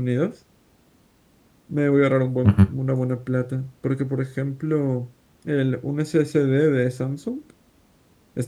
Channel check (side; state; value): both; identical; correlation 1.00